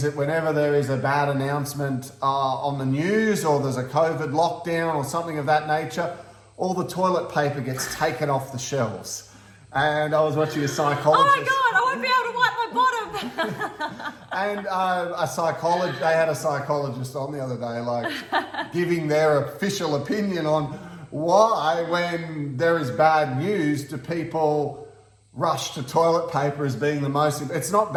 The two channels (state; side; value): identical; both; correlation 1.00